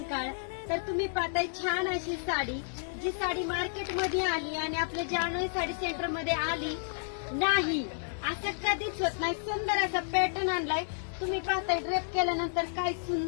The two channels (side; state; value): right; silent; digital silence